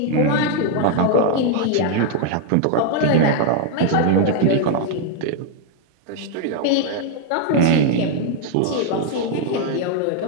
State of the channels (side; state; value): both; different; correlation 0.00